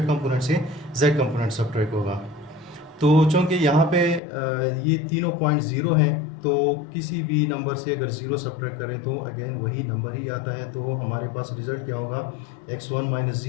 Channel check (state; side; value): drops out; right; at 4.2 s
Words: कंपोनेंट से जेड कंपोनेंट सब्ट्रैक्ट होगा। तो चूँकि यहाँ पे ये तीनों पॉइंट ज़ीरो हैं, तो किसी भी नंबर से अगर ज़ीरो सब्ट्रैक्ट करें तो अगेन वही नंबर ही आता है। तो हमारे पास रिज़ल्ट क्या होगा, x1 माइनस